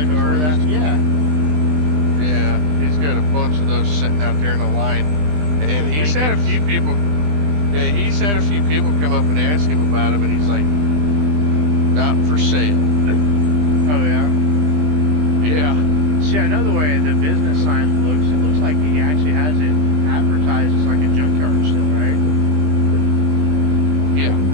before cars. that. Yeah. Yeah, he's got a bunch of those sitting out there in a line, and he's had a few people. Yeah, he's had a few people come up and ask him about him, and he's like, "Not for sale." Oh yeah. Yeah, See, I know the way the business sign looks. It looks like he actually has it advertised as like a junkyard still, right? yeah,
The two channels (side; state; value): left; late; 20 ms